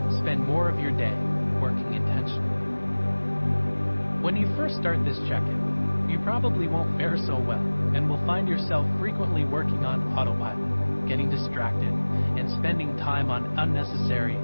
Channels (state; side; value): inverted; both; correlation -1.00